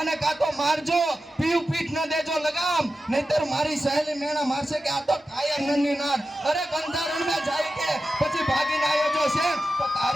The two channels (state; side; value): normal; both; correlation 0.92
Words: કાં તો મારજો, પીયું પીઠ ન દેજો લગામ, નહીતર મારી સહેલી મેણા મારશે કે આ તો કાયા નન્ની નાર. અરે બંધારણ માં જાય કે પછી ભાગીને આવ્યો જો છે તો